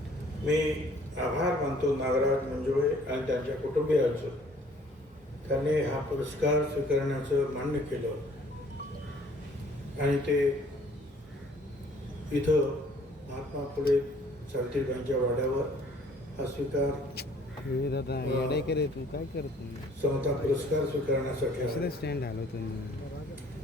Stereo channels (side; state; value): both; normal; correlation 0.57